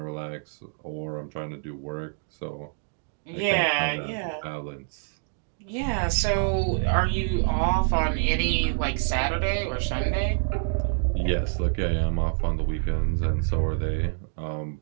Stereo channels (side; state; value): left; silent; 60 dB below the other